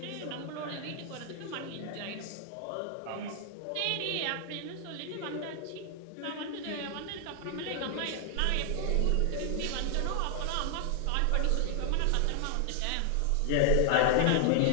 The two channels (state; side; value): different; both; correlation 0.00